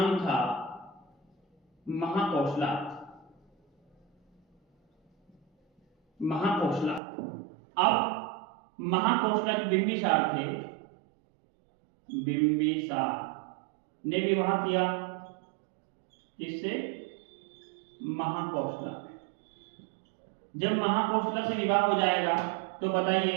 था महाकौशला। महाकौशला। अब महाकौशला जो बिंबिसार थे, बिंबिसार ने विवाह किया किससे? महाकौशला। जब महाकौशला से विवाह हो जाएगा तो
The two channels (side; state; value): left; drops out; at 7.0 s